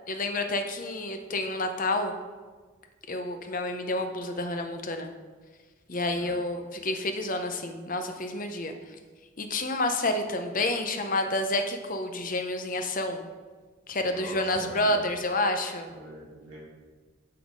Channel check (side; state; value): both; normal; correlation -0.04